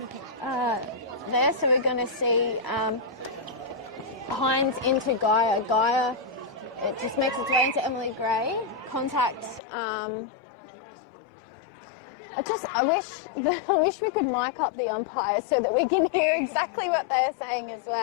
There, so we're going to see Hines into Gaia. Gaia, it just makes its way into Emily Gray. Contact. I wish we could mic up the umpire so that we can hear exactly what they're saying as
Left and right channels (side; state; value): right; drops out; at 9.6 s